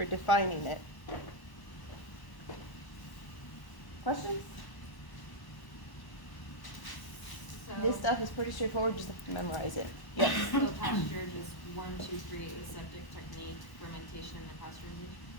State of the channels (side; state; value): right; late; 1.0 ms